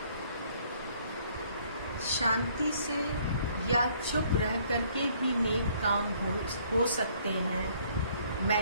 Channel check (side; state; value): both; inverted; correlation -0.63